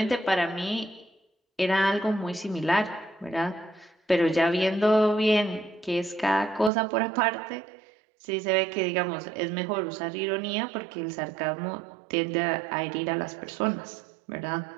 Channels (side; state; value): left; drops out; at 6.7 s